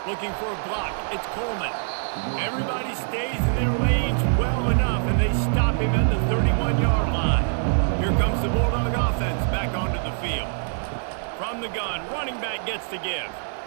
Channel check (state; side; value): silent; left; digital silence